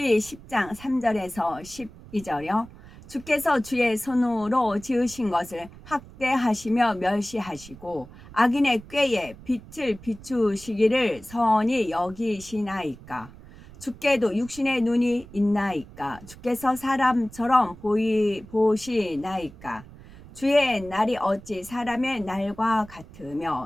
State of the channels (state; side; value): noise; right; rumble, 19 dB below the sound